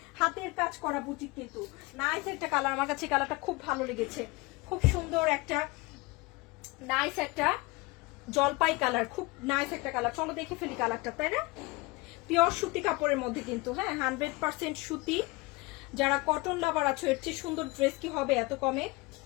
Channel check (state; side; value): quieter; right; 23.7 dB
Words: হাতের কাজ করা বুটিক কিন্তু। নাইস একটা কালার, আমার কাছে কালারটা খুব ভালো লেগেছে। খুব সুন্দর একটা নাইস একটা জলপাই কালার, খুব নাইস একটা কালার। চলো দেখে ফেলি কালারটা, তাই না? পিওর সুতি কাপড়ের মধ্যে কিন্তু, হ্যাঁ 100% সুতি। যারা কটন লাভার আছো, এর চেয়ে সুন্দর ড্রেস কি হবে এত কমে?